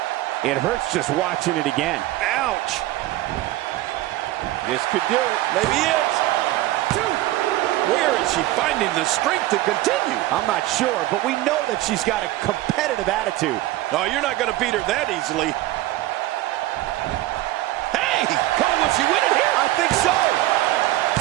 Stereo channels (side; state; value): left; quieter; 16.3 dB